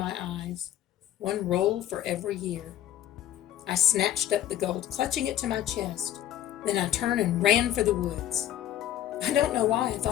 eyes, 1 roll for every year. I snatched up the gold, clutching it to my chest. Then I turned and ran for the woods. I don't know why I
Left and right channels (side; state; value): right; quieter; 12.0 dB